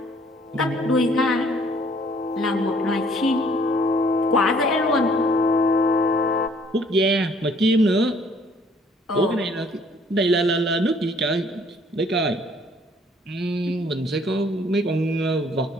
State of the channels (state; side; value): normal; both; correlation 0.60